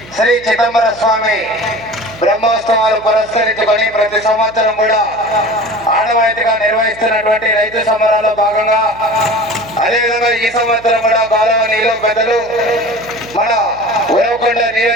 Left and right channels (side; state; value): right; noise; hum, 22 dB below the sound